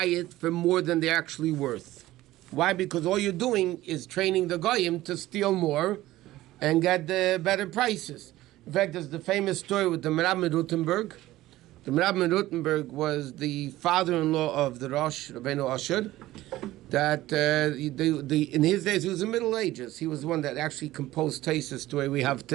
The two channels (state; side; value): quieter; left; 16.2 dB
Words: it for more than they're actually worth. Why? Because all you're doing is training the goyim to steal more and get the better prices. In fact, there's the famous story with the Merab Rutenberg. The Merab Rutenberg was the father-in-law of the Rosh, Rabbeinu Asher, that in his days, he was in the Middle Ages. He was the one that actually composed Taisus the way we have